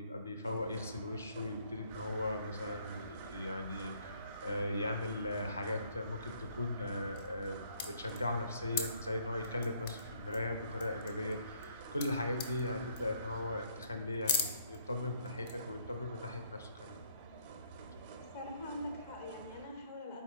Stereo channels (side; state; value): both; inverted; correlation -0.64